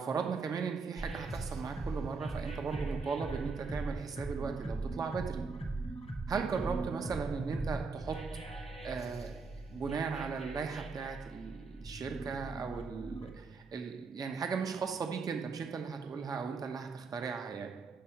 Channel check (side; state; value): left; quieter; 4.4 dB